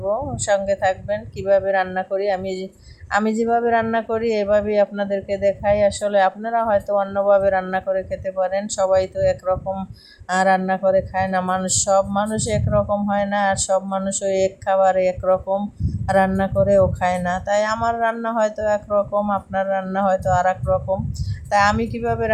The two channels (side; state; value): both; identical; correlation 1.00